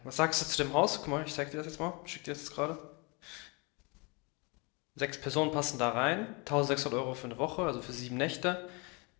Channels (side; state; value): right; quieter; 30.2 dB